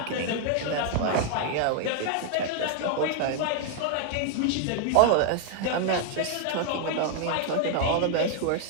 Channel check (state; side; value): different; both; correlation 0.00